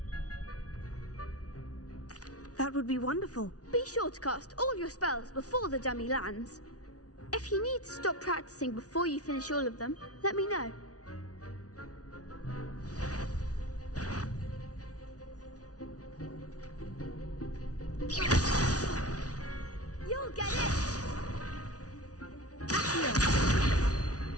That would be wonderful. Be sure to cast all your spells before the dummy lands. If you need to stop practicing before you finish all of them, let me know. You'll get it!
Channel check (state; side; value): late; right; 0.68 ms